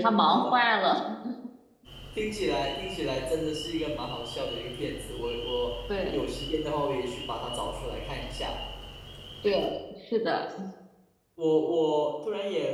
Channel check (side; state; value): both; identical; correlation 1.00